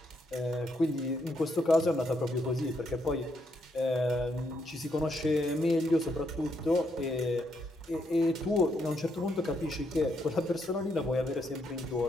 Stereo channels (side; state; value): both; normal; correlation 0.77